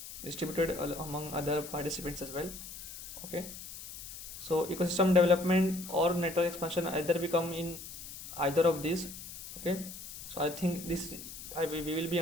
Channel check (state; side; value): noise; left; hiss, 12 dB below the sound